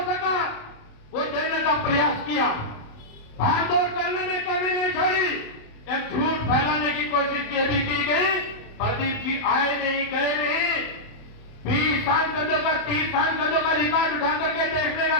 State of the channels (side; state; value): right; late; 27 ms